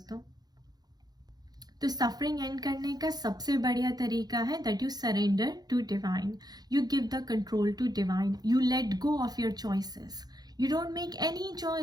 तो सफरिंग एंड करने का सबसे बढ़िया तरीका है that you surrender to divine, you give the control to divine, you let go of your choices, you don't make any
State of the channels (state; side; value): late; left; 0.19 ms